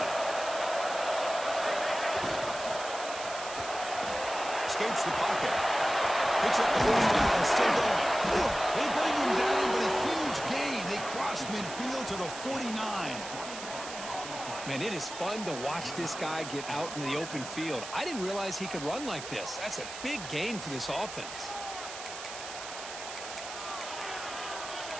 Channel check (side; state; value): right; noise; hiss, 10 dB below the sound